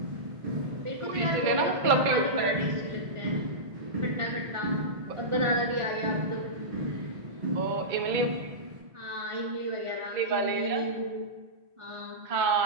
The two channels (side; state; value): left; late; 1.5 ms